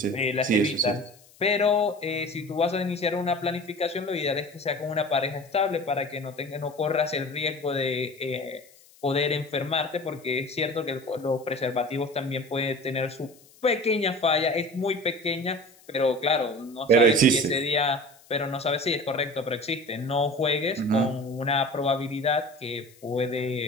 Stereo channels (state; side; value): noise; left; hiss, 27 dB below the sound